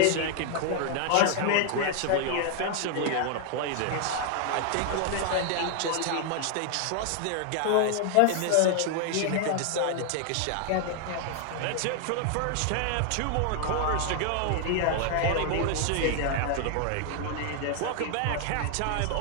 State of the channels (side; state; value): both; different; correlation 0.00